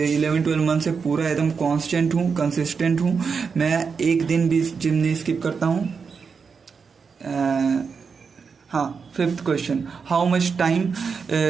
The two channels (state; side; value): quieter; left; 5.6 dB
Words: months से पूरा एकदम कांस्टेंट हूँ, कंसिस्टेंट हूँ। मैं एक दिन भी जिम नहीं स्किप करता हूँ। हाँ, fifth question, how much time